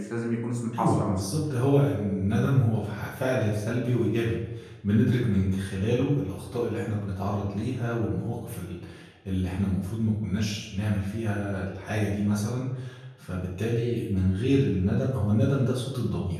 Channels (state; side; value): identical; both; correlation 1.00